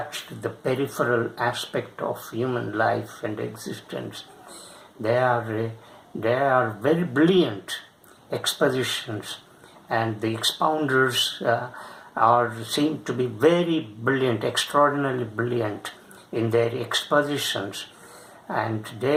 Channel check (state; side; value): identical; both; correlation 1.00